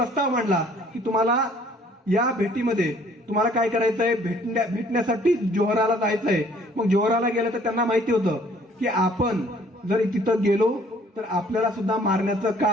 मांडला की तुम्हाला या भेटीमध्ये तुम्हाला काय करायचंय, भेटण्यासाठी जोहराला जायचंय. मग जोहराला गेलं तर त्यांना माहिती होतं की आपण जर तिथं गेलो तर आपल्याला सुद्धा मारण्याचं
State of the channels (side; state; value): both; normal; correlation 0.58